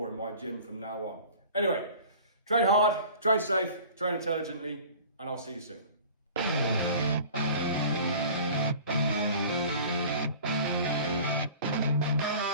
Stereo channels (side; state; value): both; inverted; correlation -0.43